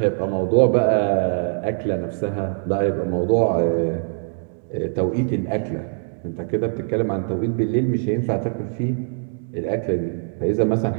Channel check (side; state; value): left; silent; digital silence